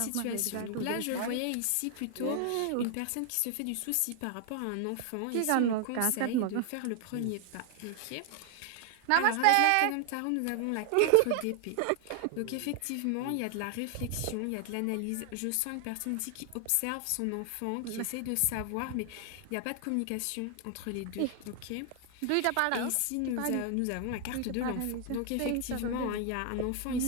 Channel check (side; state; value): both; different; correlation 0.00